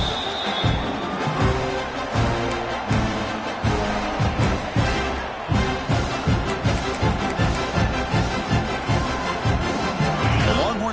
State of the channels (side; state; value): both; identical; correlation 1.00